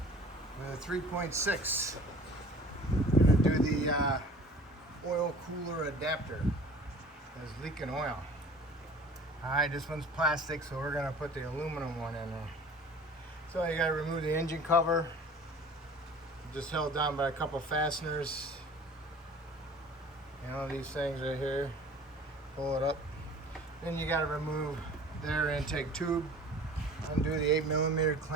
with a 3.6. I'm going to do the oil cooler adapter. It's leaking oil. Alright, this one's plastic, so we're going to put the aluminum one in there. So you got to remove the engine cover. Just held down by a couple fasteners. You know, these things right here. Pull it up. Then you got to remove the air intake tube. Undo the 8mm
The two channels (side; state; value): both; normal; correlation 0.45